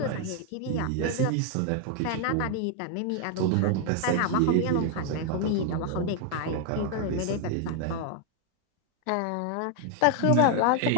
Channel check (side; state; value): both; different; correlation 0.00